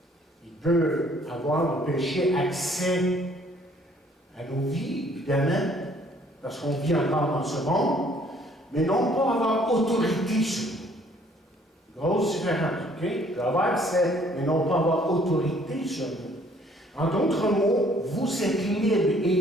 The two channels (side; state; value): both; normal; correlation 0.60